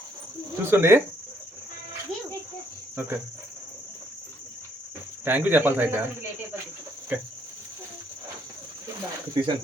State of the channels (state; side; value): normal; both; correlation 0.69